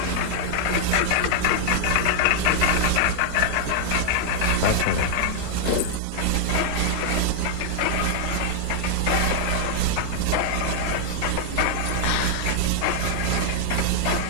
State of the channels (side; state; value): both; different; correlation 0.00